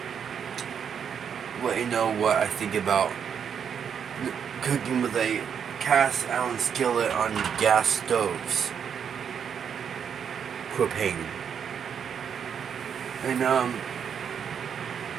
let you know what I think about cooking with a cast iron skillet on gas stoves, propane. And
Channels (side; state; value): left; quieter; 7.6 dB